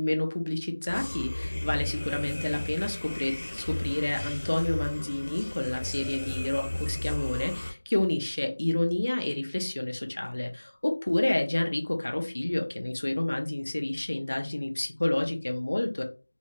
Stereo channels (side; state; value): both; inverted; correlation -1.00